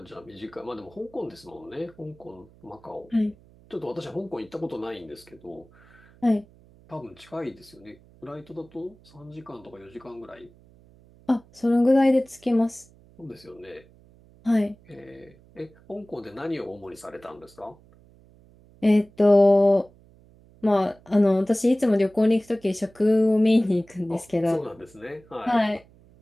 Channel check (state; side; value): noise; right; hum, 27 dB below the sound